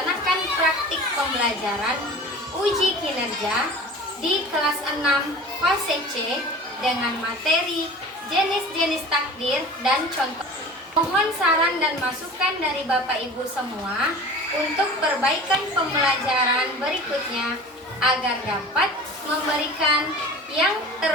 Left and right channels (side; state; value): both; normal; correlation 0.39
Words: praktik pembelajaran uji kinerja di kelas 6 fase C dengan materi jenis-jenis takdir dan contoh. Mohon saran dan masukan dari Bapak Ibu semua untuk perbaikan pembelajaran berikutnya agar dapat memberikan yang